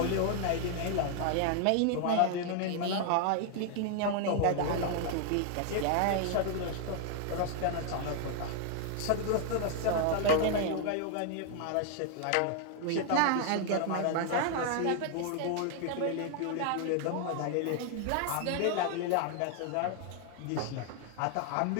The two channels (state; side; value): different; both; correlation 0.00